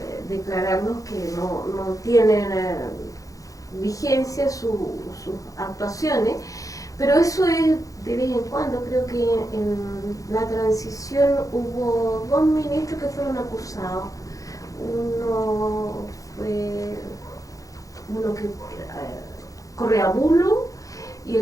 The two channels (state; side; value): late; right; 0.17 ms